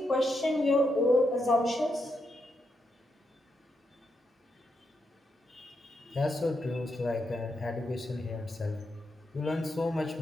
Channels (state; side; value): normal; both; correlation 0.82